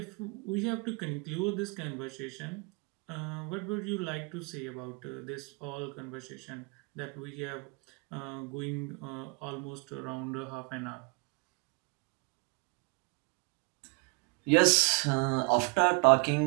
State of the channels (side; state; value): left; quieter; 32.8 dB